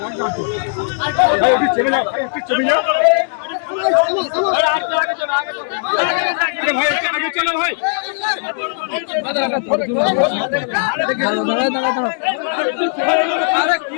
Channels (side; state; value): right; silent; digital silence